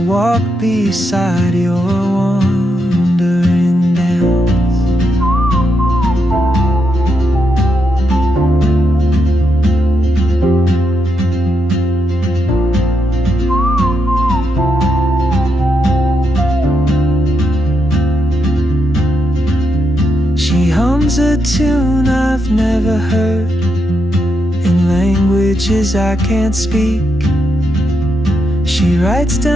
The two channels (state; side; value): normal; both; correlation 0.82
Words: walk beside your wandering dance. She hums a tune I've never heard, in languages I can't speak. She writes